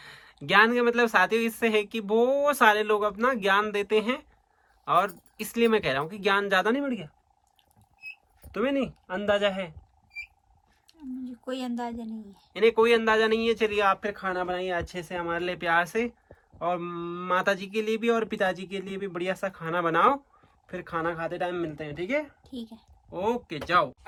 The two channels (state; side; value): identical; both; correlation 1.00